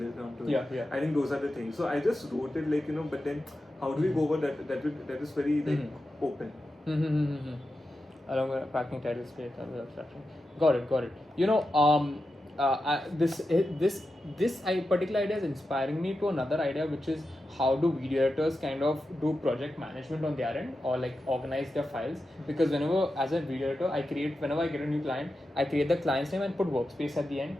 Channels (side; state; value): both; normal; correlation 0.90